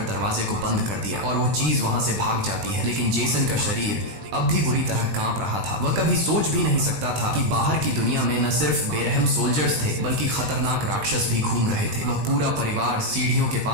दरवाजे को बंद कर दिया और वो चीज वहां से भाग जाती है। लेकिन जेसन का शरीर अब भी बुरी तरह कांप रहा था। वह कभी सोच भी नहीं सकता था कि बाहर की दुनिया में न सिर्फ बेरहम सोल्जर्स थे, बल्कि खतरनाक राक्षस भी घूम रहे थे। वह पूरा परिवार सीढ़ियों के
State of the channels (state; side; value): late; left; 20 ms